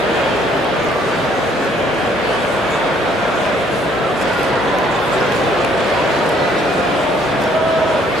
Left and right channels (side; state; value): left; noise; hum, 24 dB below the sound